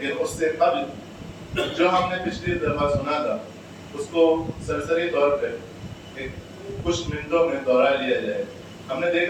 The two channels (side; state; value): both; identical; correlation 1.00